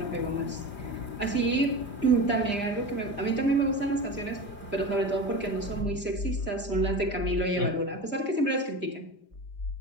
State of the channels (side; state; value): right; late; 4.9 ms